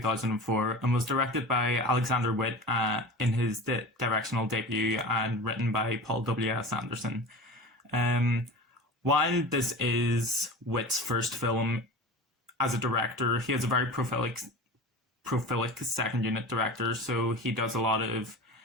and was directed by Alexander Witt in his directional debut and written by Paul W.S. Anderson. Um, while this is Witt's first film as a director, he is a very prolific second unit director, so he does a lot of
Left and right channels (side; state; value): both; normal; correlation 0.33